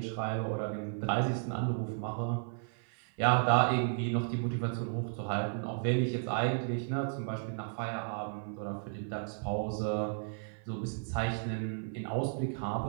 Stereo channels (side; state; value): left; silent; 55 dB below the other